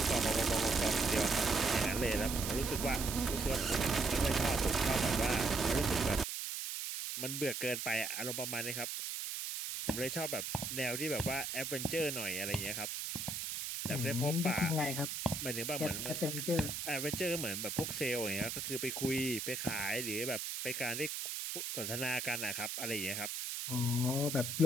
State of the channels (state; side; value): noise; right; hiss, 4 dB below the sound